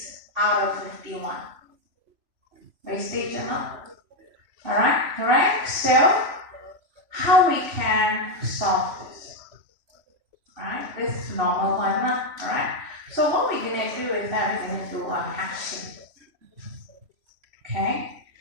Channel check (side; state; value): left; late; 3.1 ms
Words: out of 51. Wastage or not? Alright, correct? So, how we can solve this? Alright, this is normal one, alright? So what we're going to do is that we're going to do a hashing. Okay?